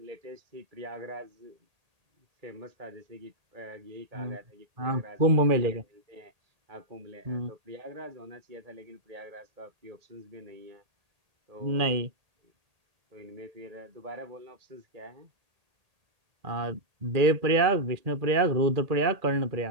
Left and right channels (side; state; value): left; late; 1.8 ms